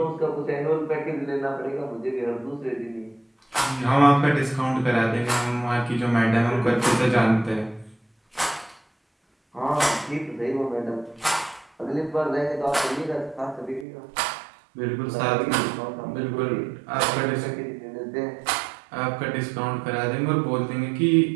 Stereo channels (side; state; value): left; drops out; at 13.9 s